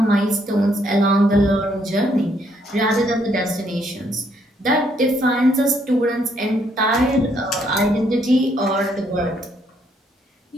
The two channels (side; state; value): both; normal; correlation 0.71